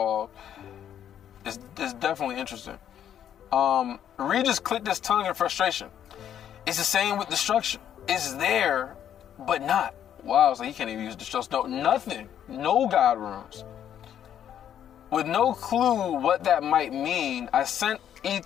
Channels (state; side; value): quieter; right; 9.9 dB